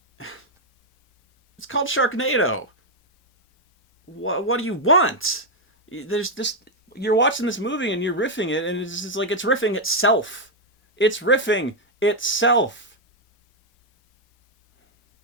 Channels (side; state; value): both; normal; correlation 0.01